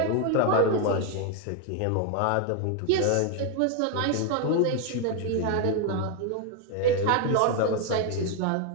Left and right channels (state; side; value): different; both; correlation 0.01